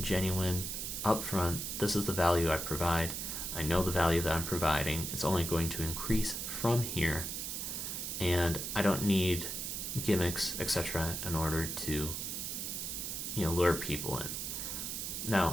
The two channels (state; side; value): noise; right; hiss, 4 dB below the sound